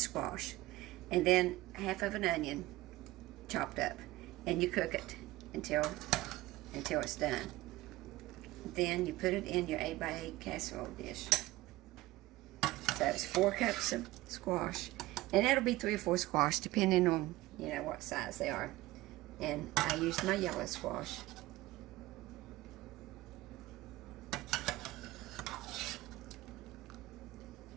and then half of an onion chopped up, and you cook it until it's done. Then you put it in your 8x8 casserole dish. So it's 4 cups of squash. And that'll be 3 or 4 squash, depending on, what size they are. And I used my yellow squash.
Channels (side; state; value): left; quieter; 18.3 dB